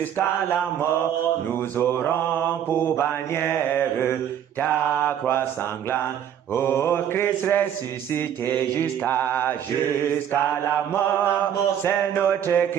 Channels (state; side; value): quieter; left; 9.6 dB